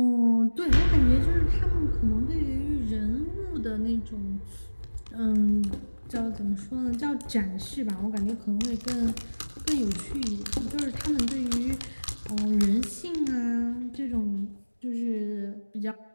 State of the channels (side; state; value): both; inverted; correlation -1.00